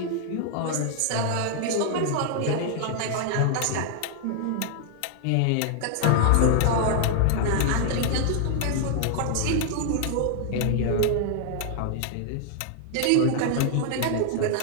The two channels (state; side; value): different; both; correlation 0.00